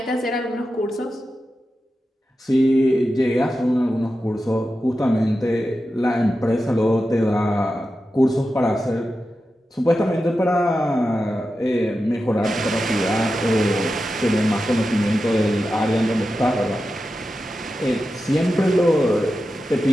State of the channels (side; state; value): both; normal; correlation 0.91